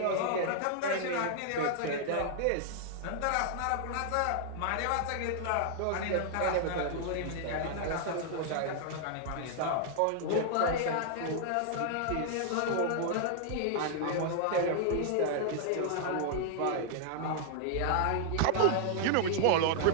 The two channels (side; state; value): both; different; correlation 0.00